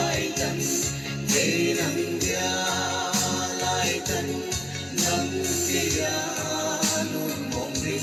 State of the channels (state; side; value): identical; both; correlation 1.00